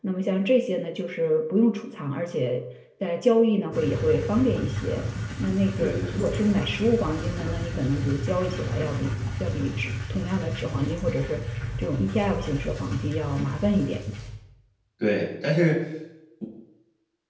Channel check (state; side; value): identical; both; correlation 1.00